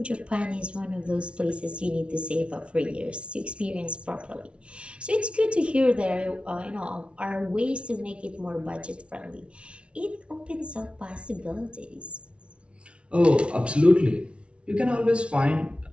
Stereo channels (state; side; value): late; left; 0.059 ms